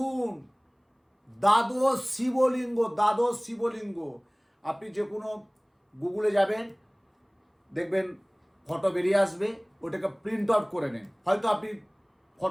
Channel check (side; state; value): both; identical; correlation 1.00